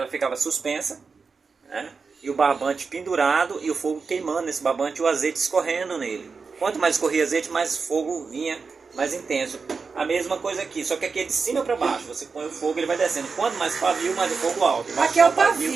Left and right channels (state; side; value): quieter; left; 4.9 dB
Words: ficava suspensa, né? E o barbante pendurado e o fogo queimando nesse barbante e o azeite escorrendo nele. Quanto mais escorria azeite, mais fogo vinha mais intenso. A mesma coisa aqui, só que aqui é de cima para baixo. Você põe o fogo, ele vai descendo. Quanto mais pavio, mais o fogo alto. Aqui é o